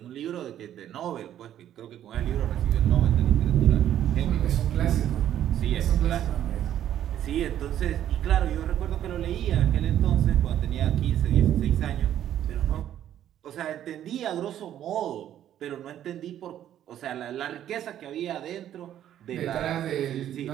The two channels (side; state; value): left; quieter; 11.2 dB